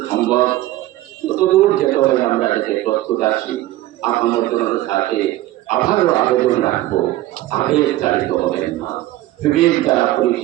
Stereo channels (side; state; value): left; quieter; 15.7 dB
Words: সম্ভব ততদূর যেতে হলে আমরা যাতে প্রস্তুত আছি। আপনার সাথে আবারও আবেদন রাখবো, আবেগ চালিত হবেন না, বিবেক দ্বারা